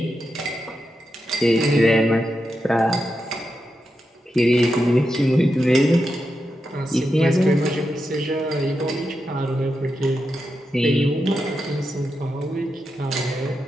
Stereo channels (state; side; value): normal; both; correlation 0.87